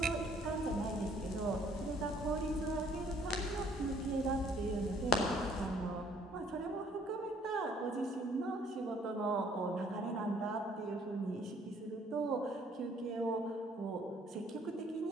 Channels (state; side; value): normal; both; correlation 0.61